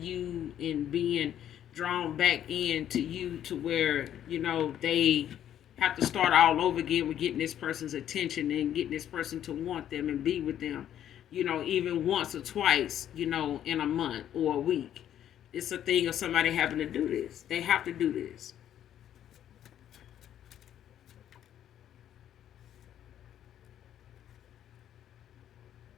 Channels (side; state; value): right; quieter; 10.7 dB